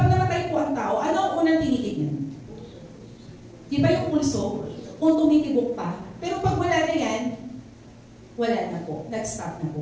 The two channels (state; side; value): identical; both; correlation 1.00